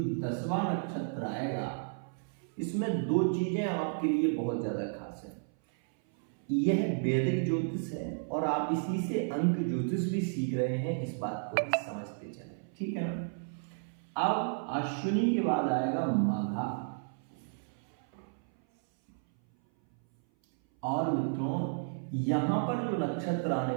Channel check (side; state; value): left; silent; 56 dB below the other